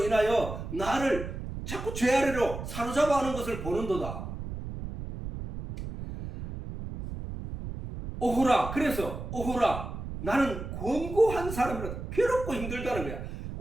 인하여 나를 자꾸 죄 아래로 사로잡아 하는 것을 보는도다. 오호라. 그래서 오호라, 나는 권고한 사람이라도 괴롭고 힘들다는 거야.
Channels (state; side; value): noise; right; rumble, 8 dB below the sound